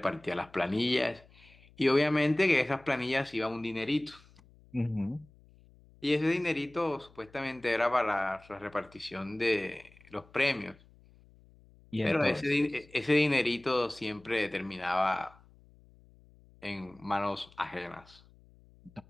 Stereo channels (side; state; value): left; noise; hum, 27 dB below the sound